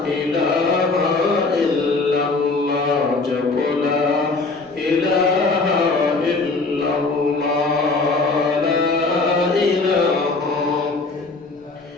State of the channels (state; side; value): quieter; right; 3.7 dB